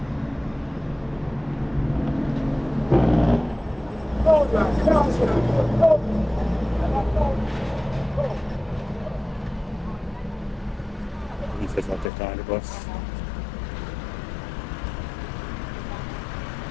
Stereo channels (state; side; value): drops out; right; at 12.1 s